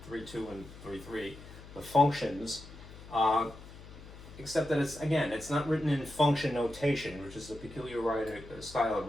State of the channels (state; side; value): noise; left; hum, 16 dB below the sound